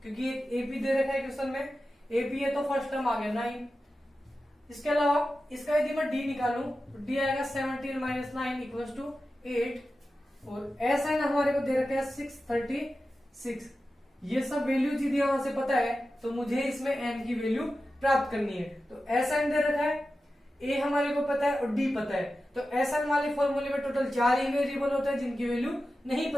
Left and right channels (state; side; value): normal; both; correlation 0.93